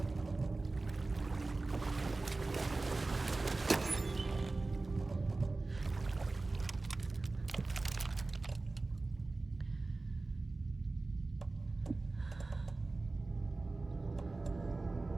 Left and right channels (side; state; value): left; quieter; 3.3 dB